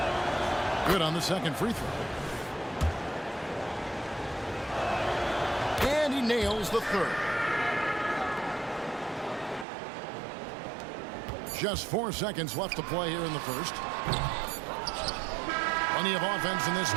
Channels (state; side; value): drops out; left; at 9.7 s